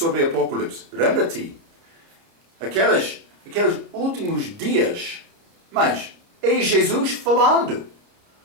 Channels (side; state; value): left; late; 30 ms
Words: Apocalipse. Lembra-te? Aqueles últimos dias. Mas é Jesus falando.